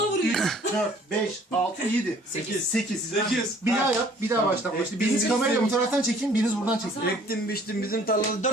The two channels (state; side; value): normal; both; correlation 0.55